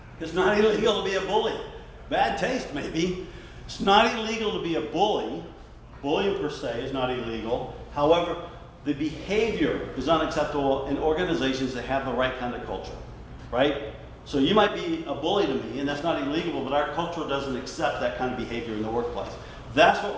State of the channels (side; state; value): both; identical; correlation 1.00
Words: It's not illegal to be a bully. Bad taste, maybe. It's not illegal to be a bully. Bullying per se is not illegal. However, the behavior is unacceptable in organizations that have the right kind of culture, right? So you might be a bully to me, and that's not illegal, but our culture doesn't accept that kind of behavior in the workplace. That's what